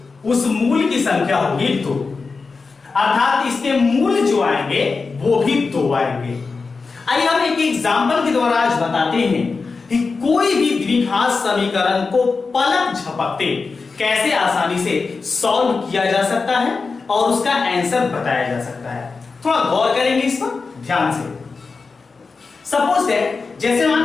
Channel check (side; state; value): right; quieter; 4.4 dB